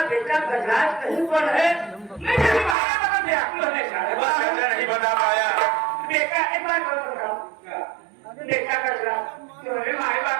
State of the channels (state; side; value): drops out; left; at 2.8 s